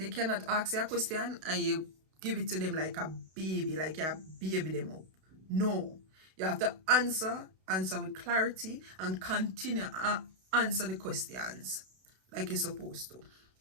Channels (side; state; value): left; late; 32 ms